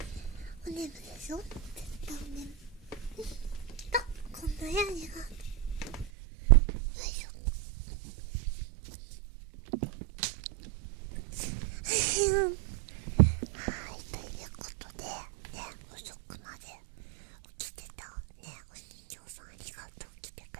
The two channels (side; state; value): left; drops out; at 6.1 s